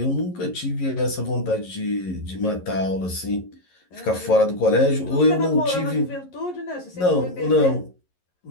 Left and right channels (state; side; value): late; right; 11 ms